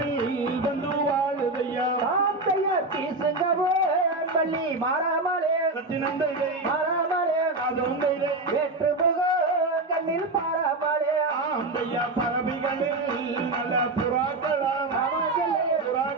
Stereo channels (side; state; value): left; quieter; 3.1 dB